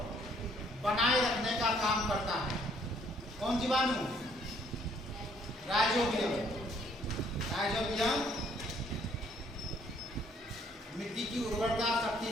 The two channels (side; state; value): both; normal; correlation 0.64